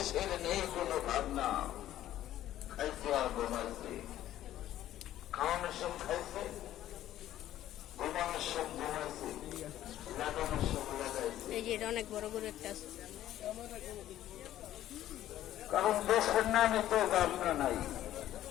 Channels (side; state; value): right; quieter; 12.9 dB